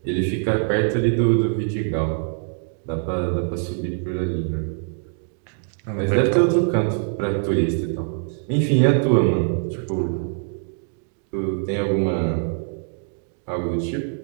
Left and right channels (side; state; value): left; silent; 58 dB below the other